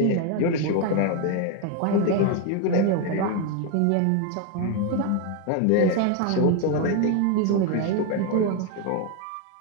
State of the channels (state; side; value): different; both; correlation 0.01